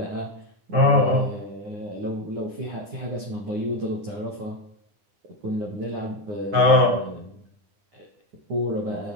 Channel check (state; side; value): late; left; 9.8 ms